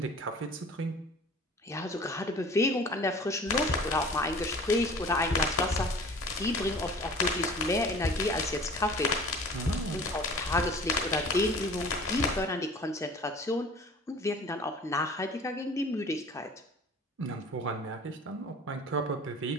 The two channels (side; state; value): both; normal; correlation 0.45